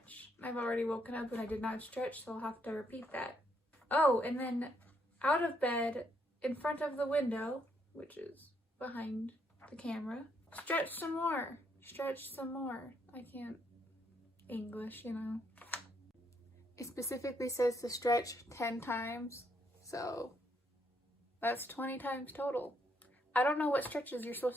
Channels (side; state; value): both; normal; correlation 0.73